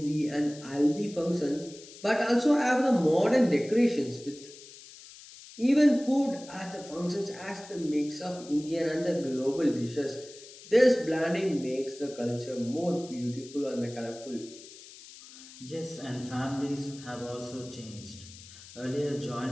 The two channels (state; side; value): noise; left; hiss, 18 dB below the sound